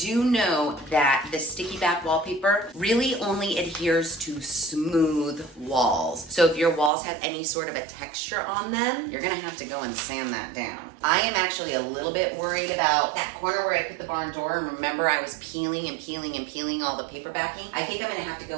know that the sticky back wallpaper really only adheres to smooth walls. So if your walls have any sort of a texture on them, you're gonna have to go and sand that down. I am actually a little bit worried about that corner where I put the barn door. Remember, I was peeling and peeling and peeling all the paper backing. I think I'm gonna have to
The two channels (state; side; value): drops out; left; at 6.9 s